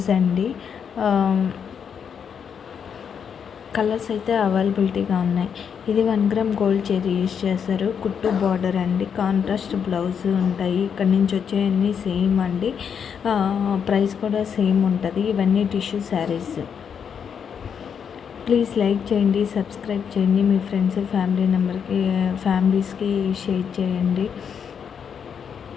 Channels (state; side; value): quieter; right; 7.3 dB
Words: అండి. కలర్స్ అయితే అవైలబిలిటీగా ఉన్నాయి. ఇది 1 గ్రామ్ గోల్డ్ చైరీ యూజ్ చేస్తారు. కుట్టు బార్డర్ అండి, కాంట్రాస్ట్ బ్లౌజ్ ఉంటాయి. ఇక్కడ నుంచి వచ్చేవన్నీ సేమ్ అండి. ప్రైస్ కూడా సేమ్ ఉంటుంది. ఇవన్నీ టిష్యూ శారీస్. ప్లీజ్ లైక్ చేయండి, సబ్స్క్రైబ్ చేయండి, మీ ఫ్రెండ్స్ ఫ్యామిలీస్కి షేర్ చేయండి.